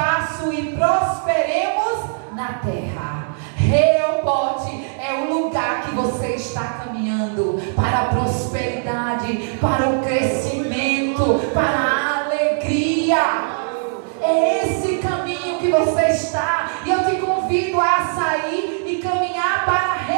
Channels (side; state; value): left; silent; digital silence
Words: e prosperemos na terra. Reobote é o lugar que você está caminhando para a prosperidade, para o crescimento, para a alegria. É esse caminho que você está, e eu te convido a sair e caminhar para